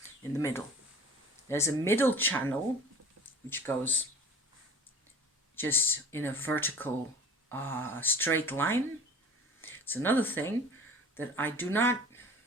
In the middle. There's a middle channel which goes just in a vertical, straight line. It's another thing that I do not,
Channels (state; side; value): normal; both; correlation 0.42